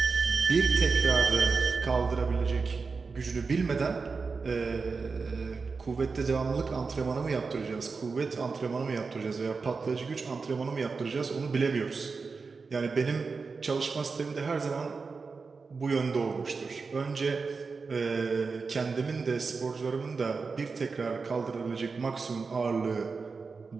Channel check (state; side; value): quieter; left; 4.6 dB